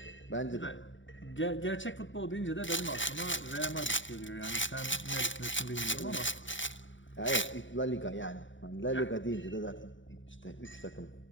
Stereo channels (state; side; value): late; right; 0.55 ms